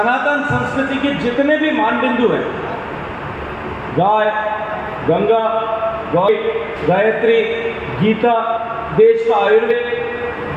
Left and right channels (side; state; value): both; identical; correlation 1.00